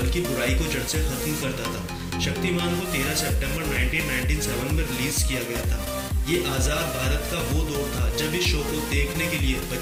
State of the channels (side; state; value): both; identical; correlation 1.00